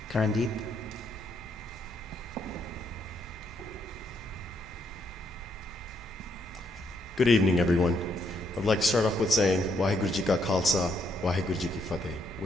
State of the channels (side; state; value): both; normal; correlation 0.74